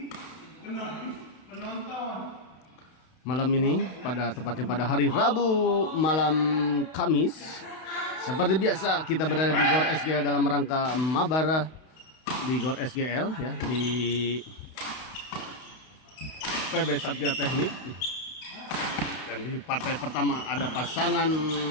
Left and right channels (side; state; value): right; late; 32 ms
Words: malam ini tepatnya pada hari Rabu malam Kamis, seperti biasa kita berada di Gor SGL dalam rangka mabar di Gor SGL ya, di PB Satria Teknik. Dan di partai pertama ada pasangan